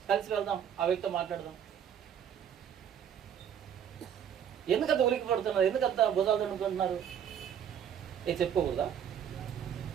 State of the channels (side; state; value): left; quieter; 8.8 dB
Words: కలిసి వెళ్దాం, ఆ వ్యక్తితో మాట్లాడదాం. ఎందుకంత ఉలికి పడుతున్నారు? ఎందుకంత భుజాలు దండుకుంటున్నారు? చెప్పుకోకూడదా?